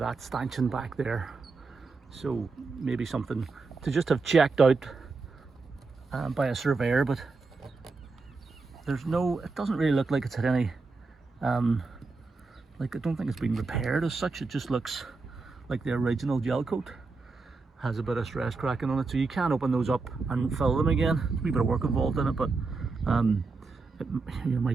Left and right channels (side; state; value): left; quieter; 4.1 dB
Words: stanchion back there. So maybe something to just have checked out by a surveyor, but there's no, it doesn't really look like it's had any, like I don't think it's been repaired as such. It just looks like the original gel coat. Has a bit of stress cracking on it, so you can open those up and fill them again. There's a wee bit of work involved in it, but you